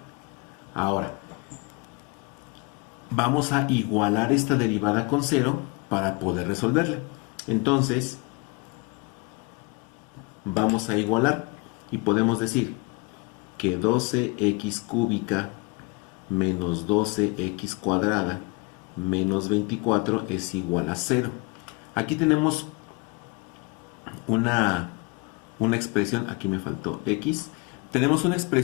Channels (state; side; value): quieter; right; 28.2 dB